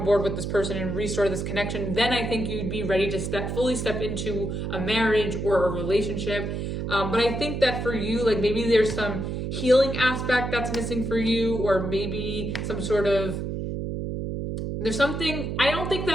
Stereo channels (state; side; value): noise; right; hum, 3 dB below the sound